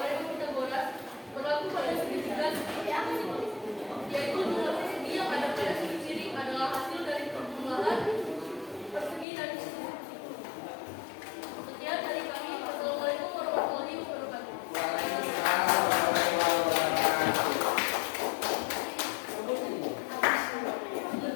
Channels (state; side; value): drops out; right; at 9.2 s